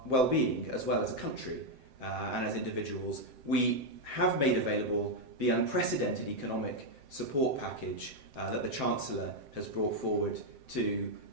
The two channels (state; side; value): late; left; 7.7 ms